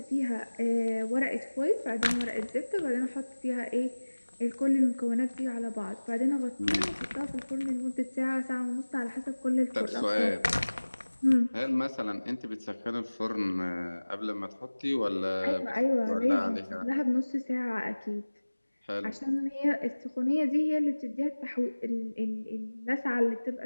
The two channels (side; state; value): both; inverted; correlation -1.00